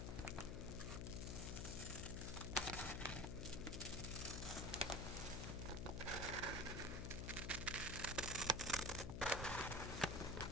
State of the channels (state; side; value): noise; left; hum, 2 dB below the sound